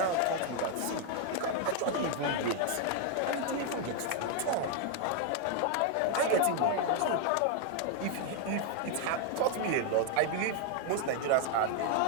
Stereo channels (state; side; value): different; both; correlation 0.00